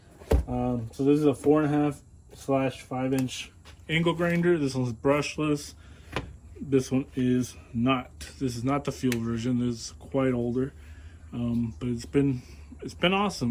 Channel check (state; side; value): identical; both; correlation 1.00